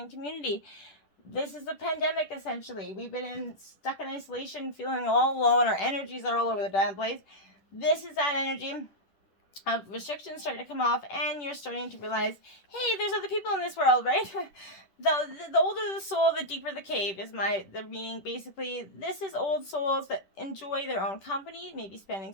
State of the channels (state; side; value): late; right; 10 ms